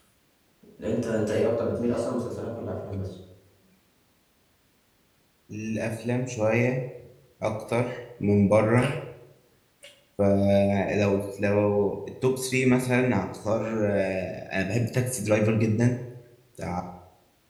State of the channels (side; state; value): both; identical; correlation 1.00